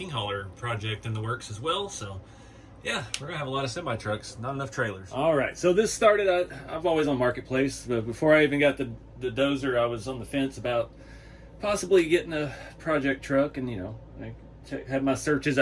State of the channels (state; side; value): identical; both; correlation 1.00